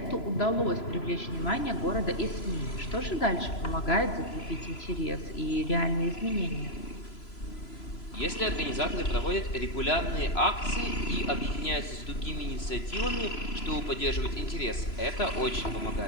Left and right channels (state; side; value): late; right; 3.0 ms